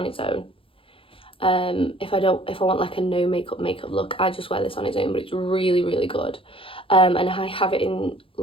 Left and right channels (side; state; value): right; late; 0.26 ms